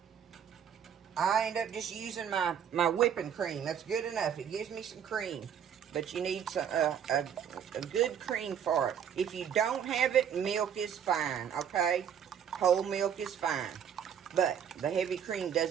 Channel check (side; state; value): left; quieter; 8.4 dB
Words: I end up just using my whipping cream. That's good enough. It gives me some cream. But you need some, a good cream for it. If you don't have it, milk is fine, okay? Whole milk is fine. But the heavy cream